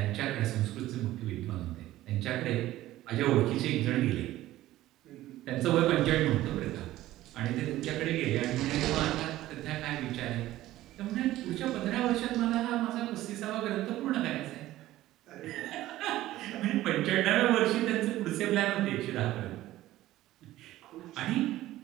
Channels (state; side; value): quieter; left; 15.4 dB